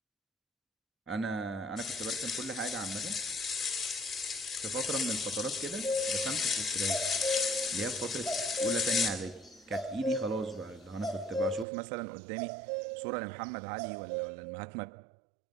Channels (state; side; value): drops out; left; at 11.7 s